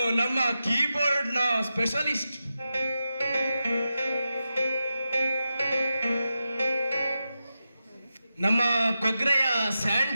ನಮ್ಮ ಕೀಬೋರ್ಡ್ನ ಸ್ಪೆಷಲಿಸ್ಟ್. ನಮ್ಮ ಕೊಗ್ರೆಯ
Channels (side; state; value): both; inverted; correlation -0.90